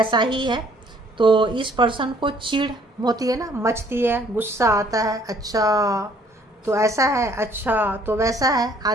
ही है। तो इस पर्सन को चिढ़ होती है ना, मचती है, गुस्सा आता है, अच्छा तो ऐसा है, अच्छा तो वैसा है,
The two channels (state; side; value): normal; both; correlation 0.61